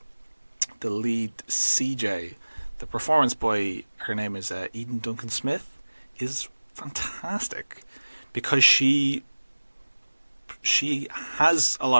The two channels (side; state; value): both; inverted; correlation -1.00